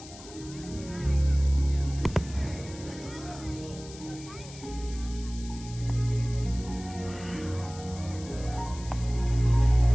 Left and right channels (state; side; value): noise; left; hiss, 17 dB below the sound